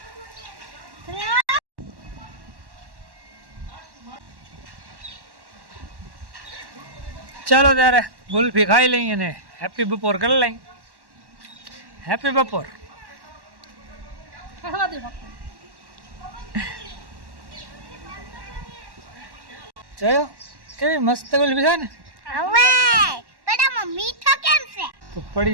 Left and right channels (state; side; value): late; left; 1.1 ms